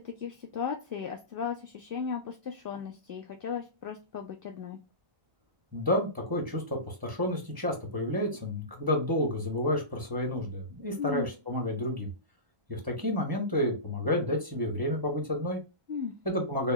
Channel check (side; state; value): left; late; 1.0 ms